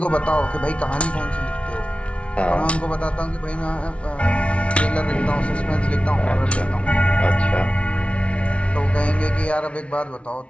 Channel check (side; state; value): right; late; 0.062 ms